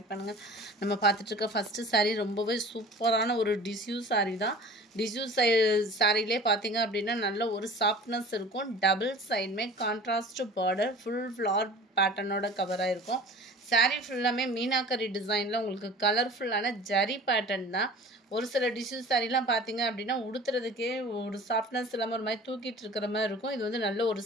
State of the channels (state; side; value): normal; both; correlation 0.42